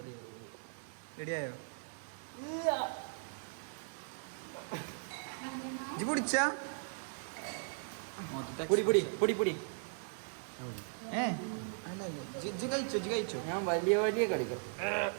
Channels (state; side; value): silent; left; digital silence